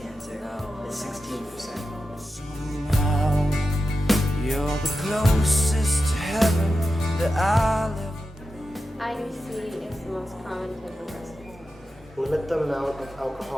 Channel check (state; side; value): normal; both; correlation 0.91